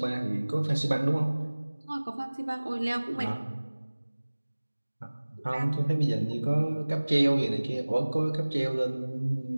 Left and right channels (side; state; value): both; inverted; correlation -1.00